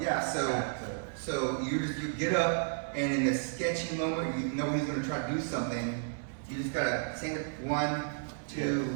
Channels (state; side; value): silent; left; 56 dB below the other